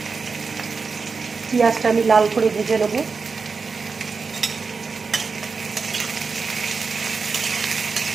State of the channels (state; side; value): quieter; left; 4.8 dB